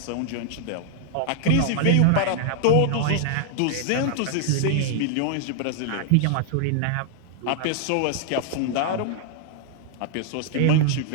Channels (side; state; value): both; different; correlation 0.00